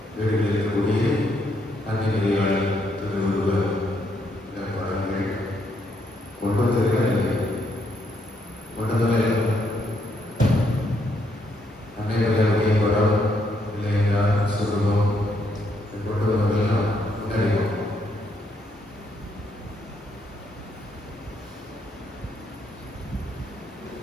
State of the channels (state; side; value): normal; both; correlation 0.75